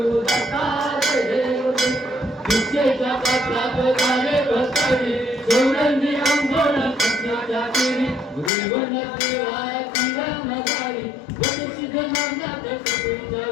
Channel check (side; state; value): right; drops out; at 8.5 s